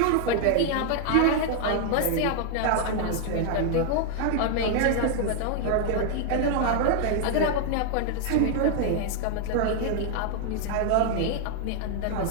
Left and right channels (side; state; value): both; different; correlation 0.00